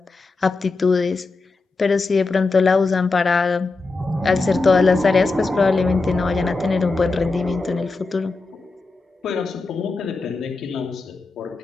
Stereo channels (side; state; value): right; quieter; 3.7 dB